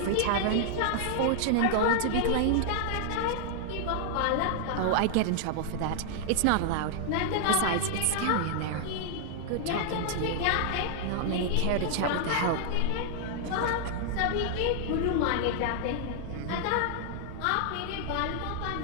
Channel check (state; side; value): different; both; correlation -0.01